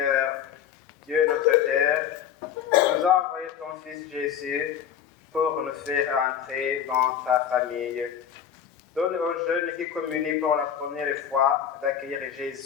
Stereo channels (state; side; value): quieter; right; 8.9 dB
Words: Dieu notre Père, tu nous as envoyé ton Fils Jésus pour nous faire entrer dans ta famille. Donne aux jeunes qui communient pour la première fois d'accueillir